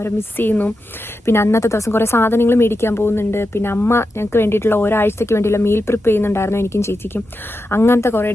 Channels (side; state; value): both; normal; correlation 0.89